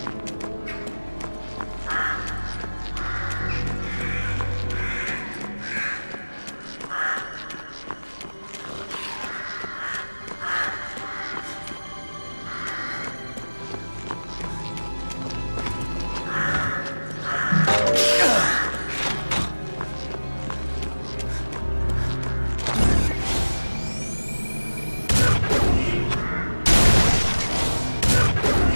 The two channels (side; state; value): both; inverted; correlation -1.00